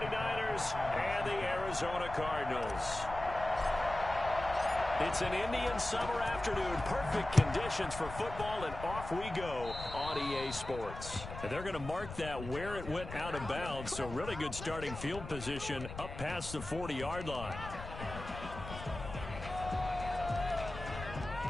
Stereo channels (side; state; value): left; noise; rumble, 10 dB below the sound